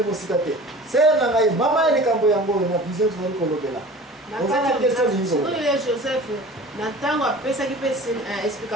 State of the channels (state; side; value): normal; both; correlation 0.41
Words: mosika te sere na ngai mama ya likambo yango oyo na vision tozali kolobela ozana question oyo joseph na ntango apesaki mpe